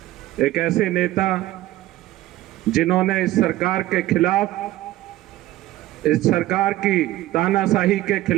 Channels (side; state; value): left; quieter; 15.8 dB